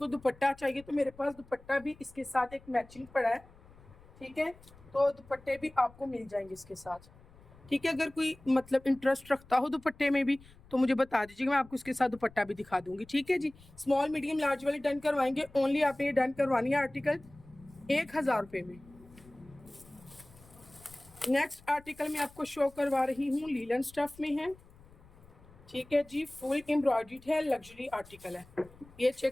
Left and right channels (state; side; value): noise; left; rumble, 24 dB below the sound